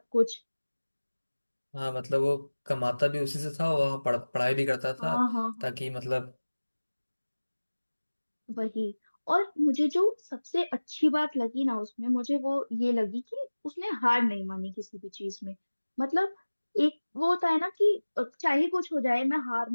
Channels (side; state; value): both; inverted; correlation -1.00